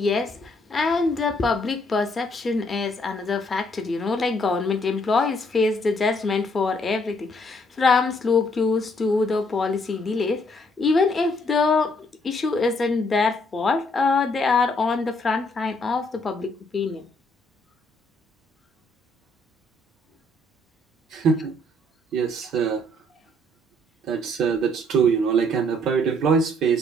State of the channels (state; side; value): normal; both; correlation 0.68